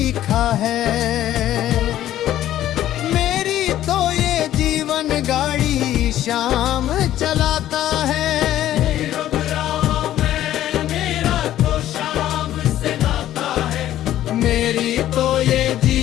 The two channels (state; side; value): quieter; right; 12.9 dB